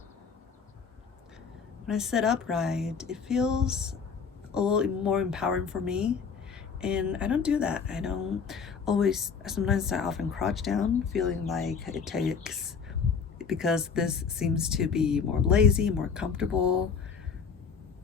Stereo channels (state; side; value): quieter; right; 5.9 dB